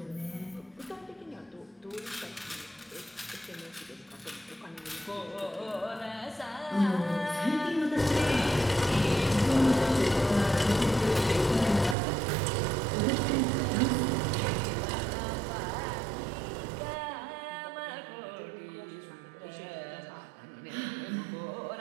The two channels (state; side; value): drops out; left; at 12.0 s